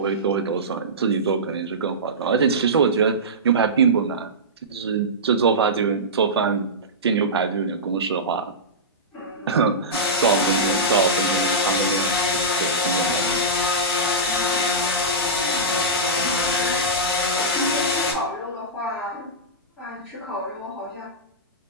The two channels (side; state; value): both; normal; correlation -0.16